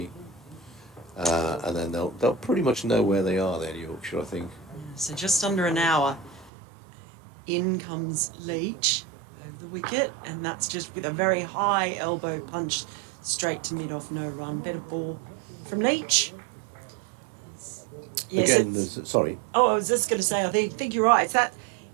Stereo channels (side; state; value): left; drops out; at 6.5 s